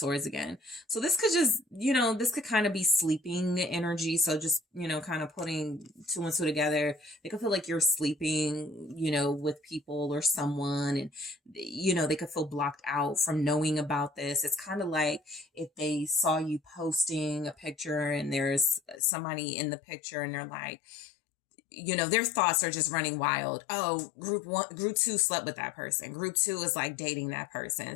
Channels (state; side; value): drops out; right; at 19.0 s